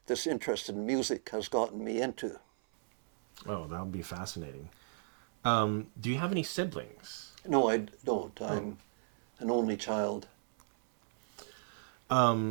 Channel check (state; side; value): silent; left; 54 dB below the other